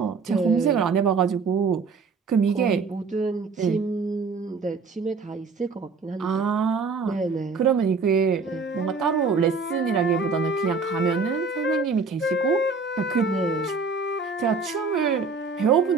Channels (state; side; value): quieter; left; 4.6 dB